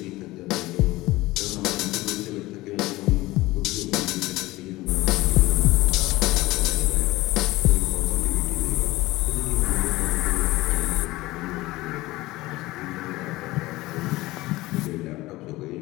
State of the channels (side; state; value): right; quieter; 19.1 dB